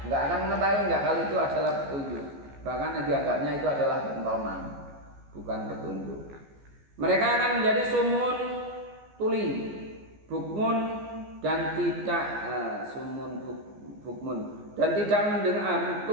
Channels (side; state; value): left; late; 14 ms